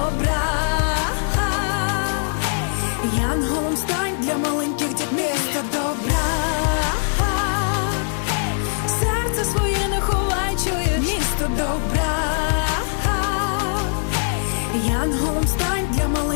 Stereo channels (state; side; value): silent; right; digital silence